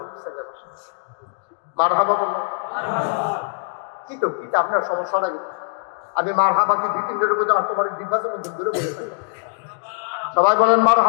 ছেলে। মারহাবা বললাম কি তো কি আপনার সমস্যা নাই, আমি মারহাবা কি 2-3 দিনের মধ্যে তোমার দিবাসের মধ্যে দূরে বলে থাকি। সবাই বলেন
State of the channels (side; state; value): right; silent; 64 dB below the other